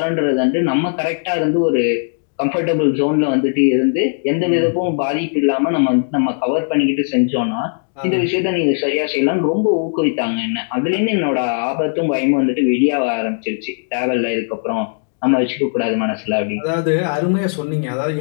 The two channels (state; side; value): silent; right; digital silence